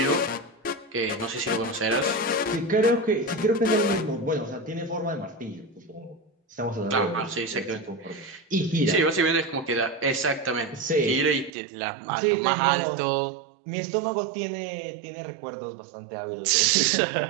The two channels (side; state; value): left; drops out; at 11.5 s